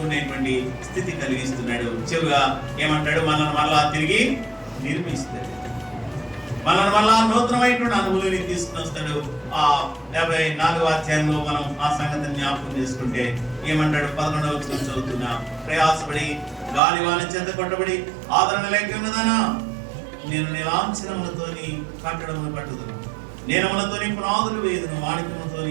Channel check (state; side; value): drops out; left; at 16.8 s